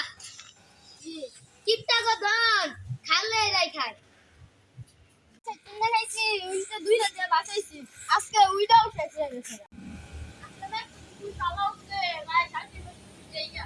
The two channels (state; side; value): identical; both; correlation 1.00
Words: কিপটা ধন খালে রাই খায় কিনে খাইছি উইটা 2 রাতে বাঁচাইছি আজকে উইটা উঠেছে গেছে আজকে না তুই চালা উঠছে ভাই শান্তি দেইয়া